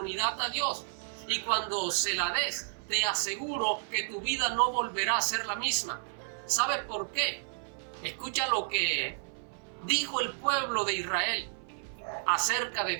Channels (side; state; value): left; silent; 55 dB below the other